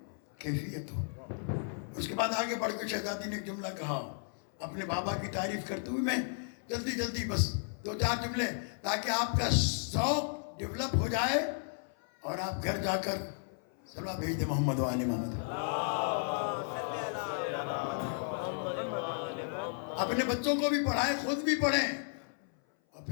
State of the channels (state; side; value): silent; right; 55 dB below the other